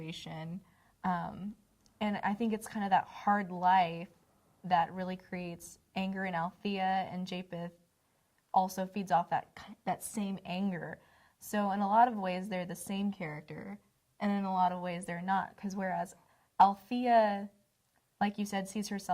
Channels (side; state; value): both; identical; correlation 1.00